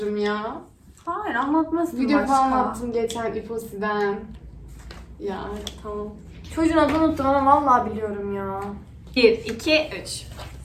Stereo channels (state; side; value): identical; both; correlation 1.00